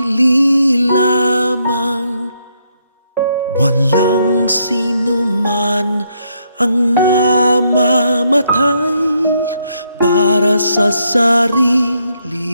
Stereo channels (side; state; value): both; inverted; correlation -0.75